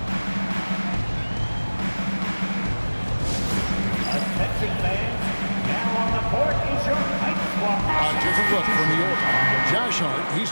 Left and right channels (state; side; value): inverted; both; correlation -1.00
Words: A different look from New York. Josh Hart, he's